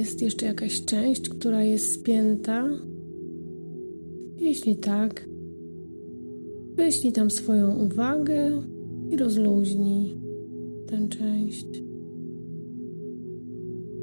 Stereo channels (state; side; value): inverted; both; correlation -1.00